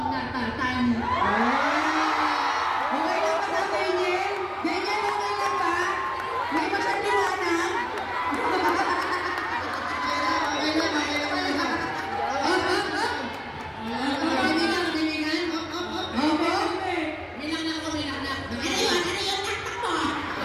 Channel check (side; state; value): both; identical; correlation 1.00